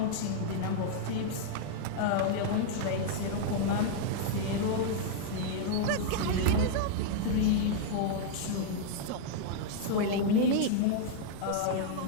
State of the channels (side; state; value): both; different; correlation -0.01